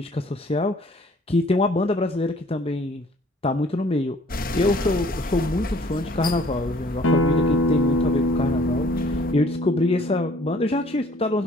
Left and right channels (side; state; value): both; normal; correlation 0.56